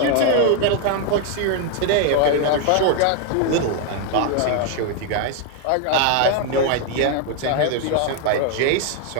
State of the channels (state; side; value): different; both; correlation 0.01